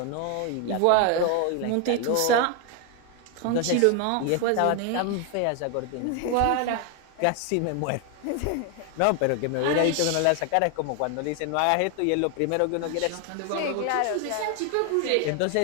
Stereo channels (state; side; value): different; both; correlation 0.01